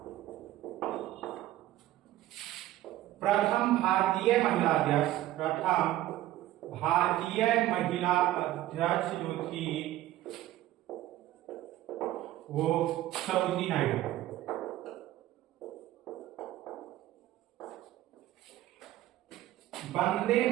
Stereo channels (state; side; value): quieter; left; 14.7 dB